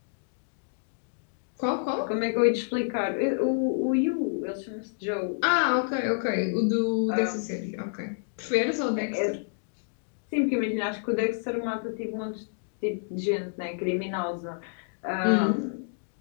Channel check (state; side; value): silent; right; digital silence